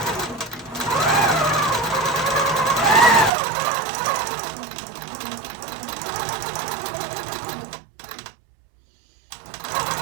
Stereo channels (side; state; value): left; drops out; at 3.3 s